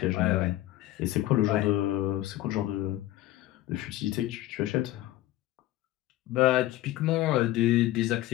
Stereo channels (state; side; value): quieter; right; 15.4 dB